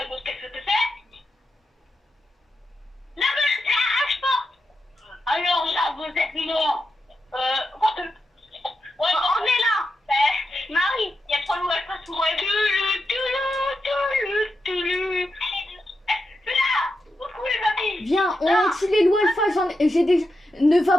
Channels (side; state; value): both; normal; correlation 0.87